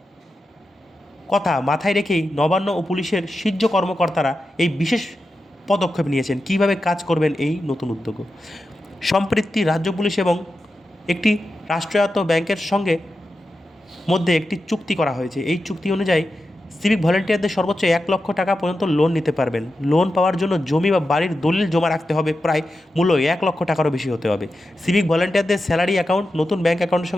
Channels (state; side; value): normal; both; correlation 0.90